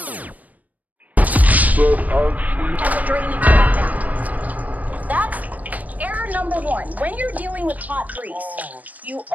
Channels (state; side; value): late; left; 0.075 ms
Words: has a drainage back down. That's error number one. When you're dealing with hot grease, you